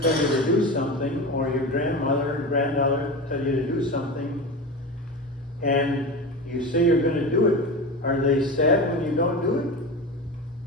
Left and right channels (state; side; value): normal; both; correlation 0.26